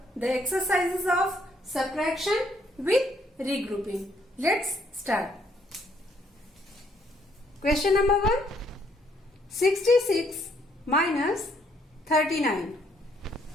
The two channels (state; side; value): normal; both; correlation 0.69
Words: the exercises of subtraction with regrouping. Let's start. Question number 1. 66 minus 39.